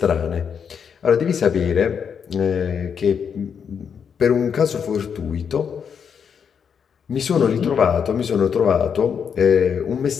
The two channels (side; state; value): right; quieter; 7.1 dB